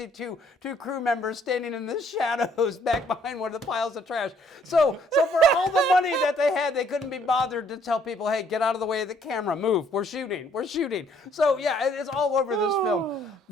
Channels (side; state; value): both; normal; correlation 0.64